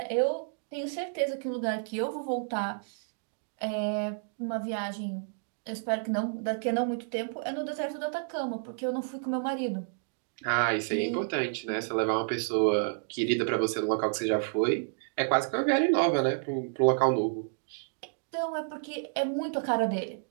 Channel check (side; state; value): left; silent; digital silence